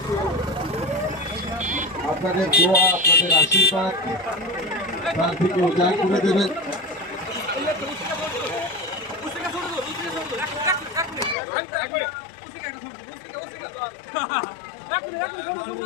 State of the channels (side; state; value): right; drops out; at 11.4 s